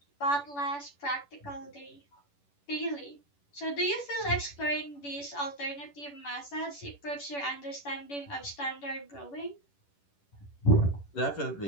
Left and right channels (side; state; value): right; late; 11 ms